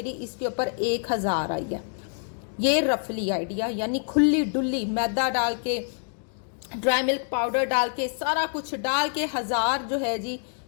इसके ऊपर 1000 आई है। ये रफली आइडिया, यानी खुली डुल्ली मैदा डाल के, ड्राई मिल्क पाउडर डाल के, सारा कुछ डाल के 1000 जो है जी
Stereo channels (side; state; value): right; silent; 61 dB below the other